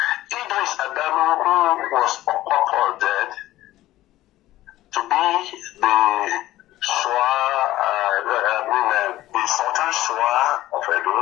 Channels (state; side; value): quieter; right; 15.5 dB